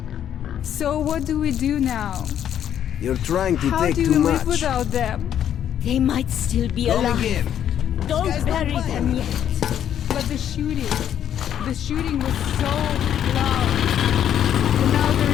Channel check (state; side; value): quieter; right; 9.9 dB